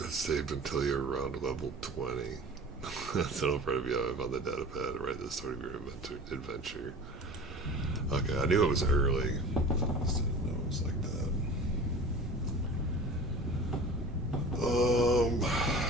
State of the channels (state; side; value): normal; both; correlation 0.38